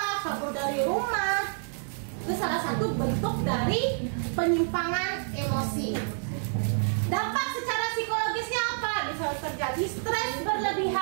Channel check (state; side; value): silent; left; digital silence